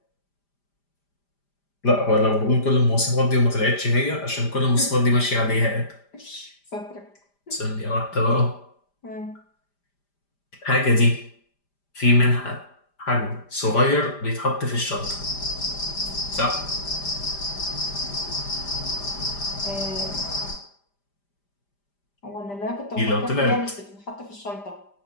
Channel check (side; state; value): right; late; 5.0 ms